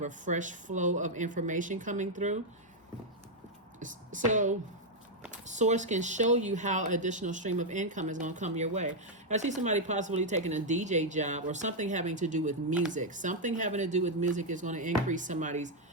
fresh flow of information coming through. So Source can show you how additional stream of income is going to come your way. I see somebody possibly taking a DJ job or something having to do with music. Something having to do with music is going to increase somebody's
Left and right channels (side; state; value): both; normal; correlation -0.01